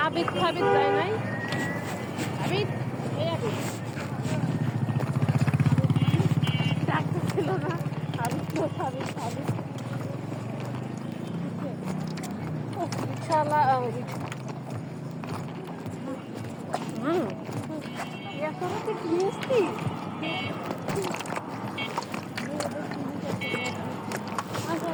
আবিদ ফাবিদ যায় নাই আবিদ এই আবিদ ডাক্তার ছিল না আবিদ তো ফাবিদ ফাবিদ রিক্সাওয়ালা এখন কি জিএসটি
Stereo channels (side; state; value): both; identical; correlation 1.00